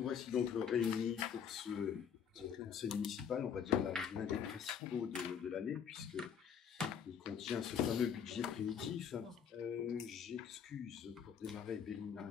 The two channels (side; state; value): right; quieter; 7.7 dB